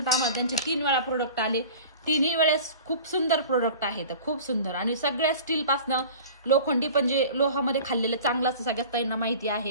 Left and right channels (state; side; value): inverted; both; correlation -0.41